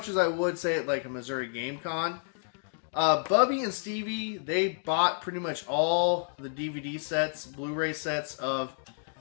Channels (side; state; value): right; silent; digital silence